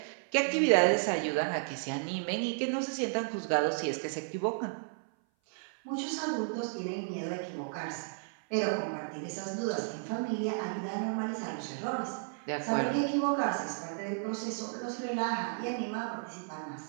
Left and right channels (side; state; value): left; silent; 56 dB below the other